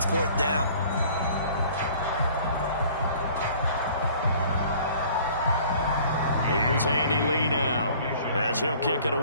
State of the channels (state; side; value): inverted; both; correlation -0.52